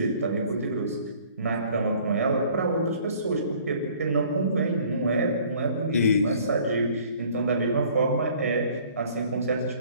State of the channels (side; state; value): both; inverted; correlation -0.55